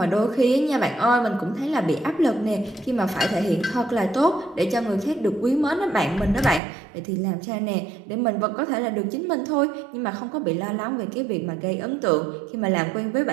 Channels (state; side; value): drops out; left; at 6.6 s